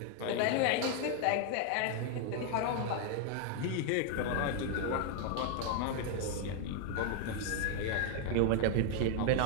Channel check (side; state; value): both; different; correlation 0.00